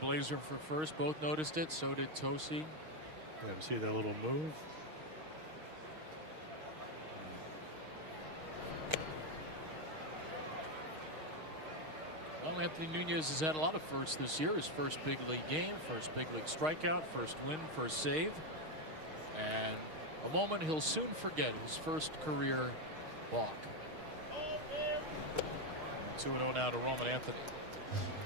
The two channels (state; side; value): late; left; 6.4 ms